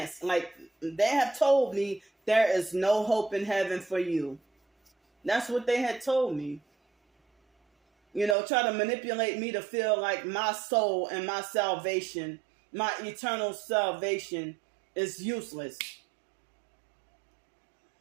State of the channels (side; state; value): left; drops out; at 8.3 s